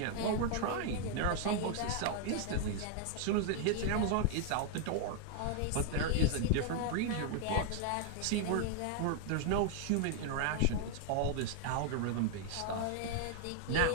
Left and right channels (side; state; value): both; different; correlation 0.00